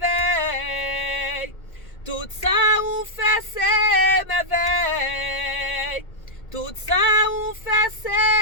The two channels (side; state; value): right; late; 1.8 ms